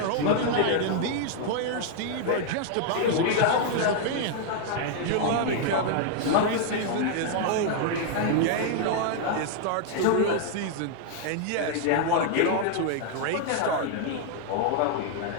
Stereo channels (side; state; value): both; different; correlation 0.00